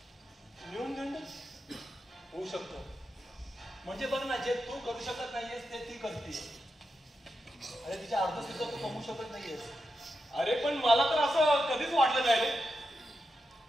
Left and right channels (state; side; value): normal; both; correlation 0.88